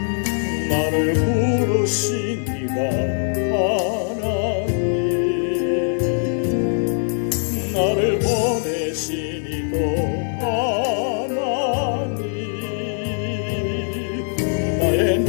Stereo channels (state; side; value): silent; right; 65 dB below the other